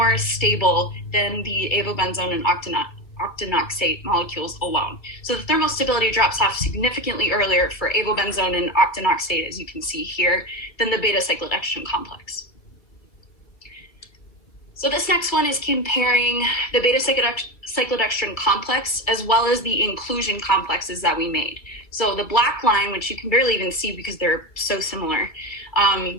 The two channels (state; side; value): late; right; 2.5 ms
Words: stable than the avobenzone and octinoxate molecules alone. So the thermostability drops off significantly earlier for avobenzone and octinoxate, as you can see here, than the beta-cyclodextrin complex. So this next one is comparing the beta-cyclodextrin complex as well as the inclusion complexes that we made. So the black line, which you can barely even see because they're so similar,